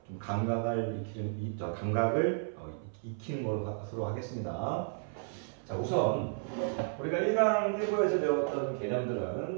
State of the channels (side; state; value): left; silent; 56 dB below the other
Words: 좀 감각을 익히는 것으로 하겠습니다. 자, 우선 우리가 1강 1부에서 배웠던